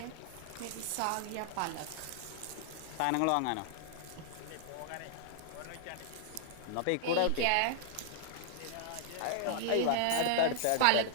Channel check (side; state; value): both; different; correlation 0.00